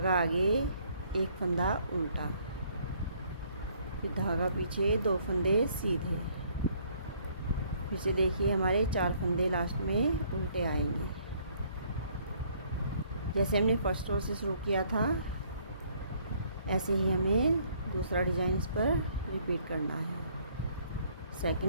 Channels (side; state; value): both; inverted; correlation -0.64